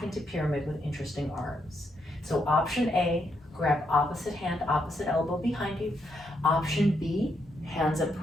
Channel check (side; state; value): both; normal; correlation 0.79